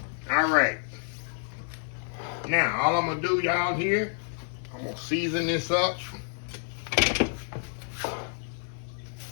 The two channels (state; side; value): silent; right; digital silence